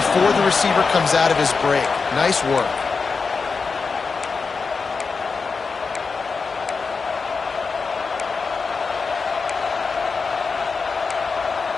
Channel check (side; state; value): right; quieter; 4.8 dB